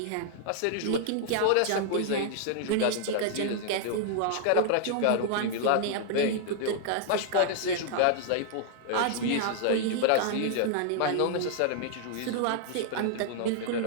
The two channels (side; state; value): both; different; correlation -0.01